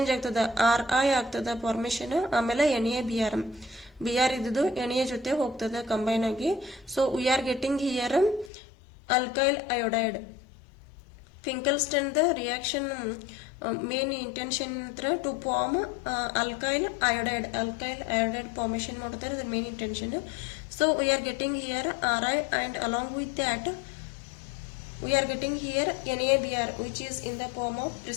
ಆಗ್ತದ, Ri ಆಗ್ತದ ಫಾರ್ಮೇಶನ್. ಆಮೇಲೆ NaBr ಇದ್ದು Na ಜೊತೆ ಹೋಗ್ತದೆ ಕಂಬೈನ್ ಆಗಿ. So we are getting here alkyl iodide. Finkelstein the reaction main intention to form alkyl iodide formation ಮಾಡ್ತಾರೆ, ಅದ್ರ main intention. So we are getting here Ri and along with that we are getting here NaBr which is in the form of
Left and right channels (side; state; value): right; drops out; at 8.5 s